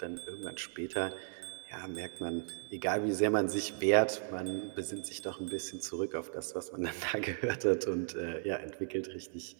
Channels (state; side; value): silent; left; 54 dB below the other